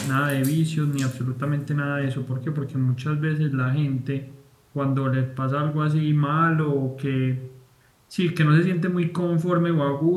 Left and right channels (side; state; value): both; identical; correlation 1.00